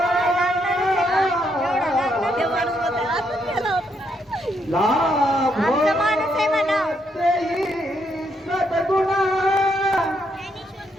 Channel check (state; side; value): normal; both; correlation 0.76